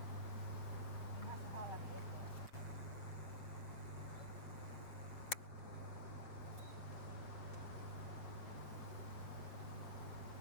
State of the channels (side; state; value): right; late; 6.5 ms